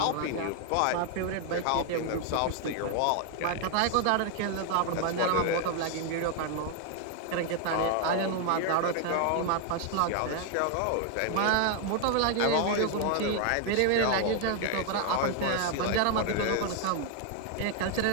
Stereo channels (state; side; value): different; both; correlation 0.00